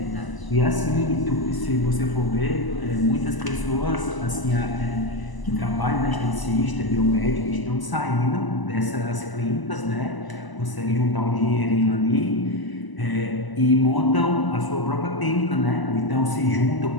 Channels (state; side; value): late; right; 1.0 ms